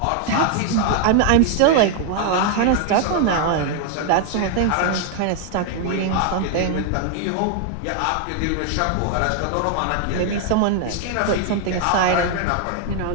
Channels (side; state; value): both; different; correlation 0.00